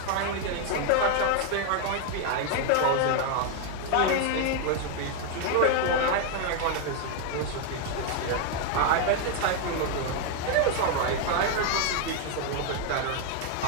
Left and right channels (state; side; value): different; both; correlation 0.01